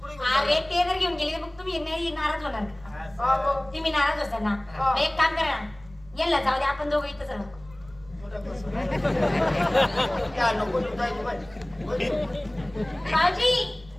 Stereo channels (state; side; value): noise; right; rumble, 23 dB below the sound